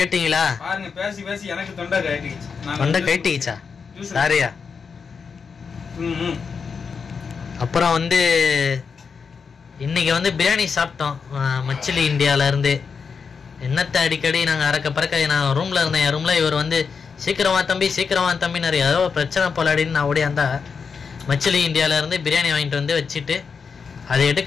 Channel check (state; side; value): quieter; right; 5.7 dB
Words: பாருங்க, பேசி பேசி எனக்கு தொண்டை கட்டிடுச்சு. தொண்டை கட்டிடுச்சா? சாரியா. அப்புறம் வந்து இன்னைக்கு வந்து பிரியாணி சாப்பிட்டோம் மச்சிலி இந்தியால இருந்து. என்னத்தை அடிக்கடி நாங்கள் அறக்க பறக்க நான் ரூம்ல இருந்தேன். என் ரூம்ல இவர் வந்து சீக்கிரமா தம்பி நிறைய ஏதோ பிரச்சனை போலாடின்னு நான் ஓடியாந்தா மச்சிலி இந்தியால இருந்து பிரியாணி வாங்கிட்டு வந்து வச்சுட்டு அதை